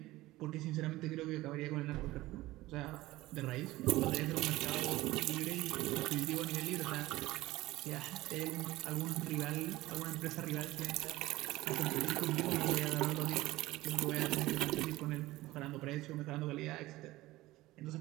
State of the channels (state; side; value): quieter; left; 18.0 dB